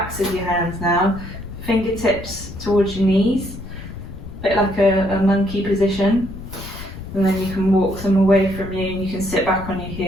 of your hands now, fingertips towards your knees, a bit like a monkey position, and then you can walk them away from you and you can sit back on your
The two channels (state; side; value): noise; left; rumble, 12 dB below the sound